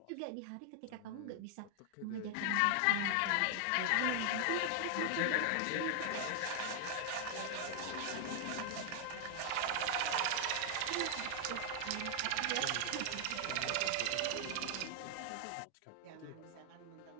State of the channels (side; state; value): both; different; correlation 0.00